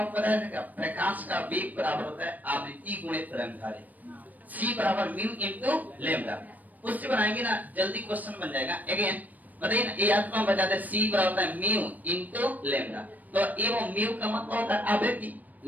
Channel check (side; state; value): left; late; 0.081 ms